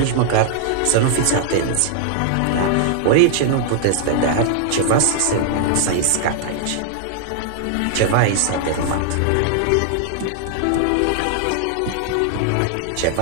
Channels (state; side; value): different; both; correlation -0.01